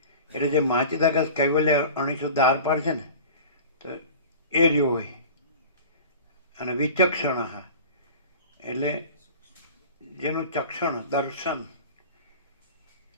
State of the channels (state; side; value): inverted; both; correlation -0.38